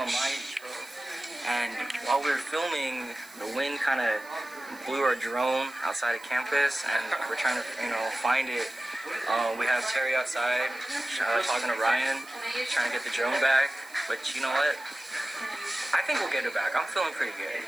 my intro. And while we were filming, the wind kind of blew our drone outside of campus, and we're trying to, you know, find it. We have Terry outside, talking to Ryan, trying to get the drone back. But you know what? I think we'll get it back. I'm feeling pretty good.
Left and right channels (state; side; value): noise; right; hiss, 23 dB below the sound